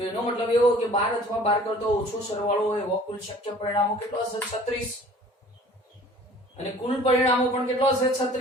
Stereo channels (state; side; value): normal; both; correlation 0.49